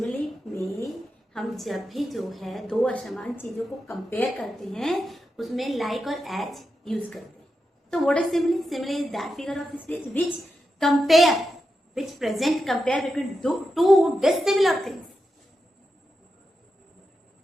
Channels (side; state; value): both; normal; correlation 0.88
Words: में हम जब भी जो है दो असमान चीजों को कंपेयर करते हैं उसमें लाइक और एज यूज करते हैं। तो what is simile? Simile is that figure of speech which present compare between two dissimilar things